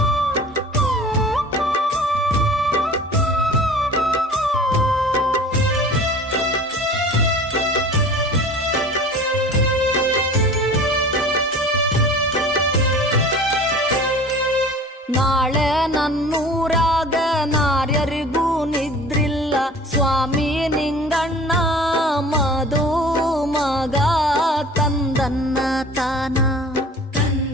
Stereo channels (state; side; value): normal; both; correlation 0.42